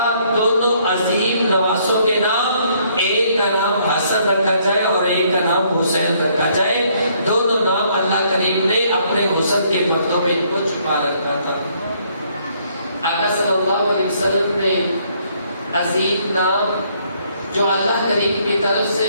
دونوں عظیم نواسوں کے نام، ایک کا نام حسن رکھا جائے اور ایک کا نام حسین رکھا جائے. دونوں نام اللہ کریم نے اپنے حسن کے پردوں میں ان کو چھپا رکھا تھا. آقا صلی اللہ علیہ وسلم نے عظیم نام جو اللہ کریم کی طرف سے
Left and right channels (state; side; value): inverted; both; correlation -0.67